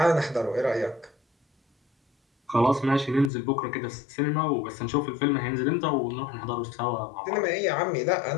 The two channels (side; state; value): right; drops out; at 3.3 s